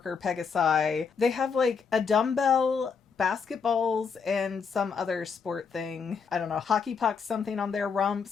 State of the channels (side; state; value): right; quieter; 5.8 dB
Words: Pegasi, they have like a dumbbell, basketballs, and some other sport thing. I don't know, hockey pucks, something on their